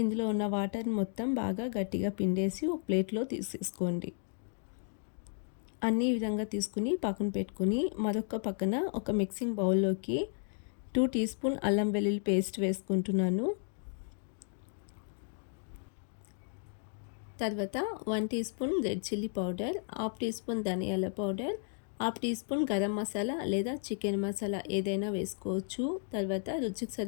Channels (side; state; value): right; silent; 55 dB below the other